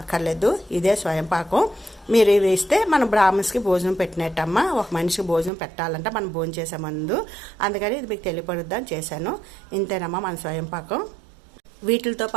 అక్కర్లేదు. ఇదే స్వయంపాకం. మీరు ఇది ఇస్తే మనం బ్రాహ్మణ్స్కి భోజనం పెట్టినట్టమ్మా. ఒక మనిషికి భోజనం పెట్టాలంటే మనం భోజనం చేసే ముందు, అందుకని ఇది మీకు తెలియపడుద్దని చేశాను. ఇంతేనమ్మా మన స్వయంపాకం. వీటితో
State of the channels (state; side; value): drops out; left; at 5.5 s